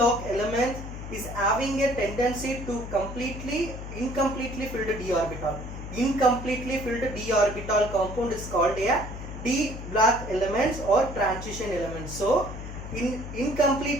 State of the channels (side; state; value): left; noise; hum, 9 dB below the sound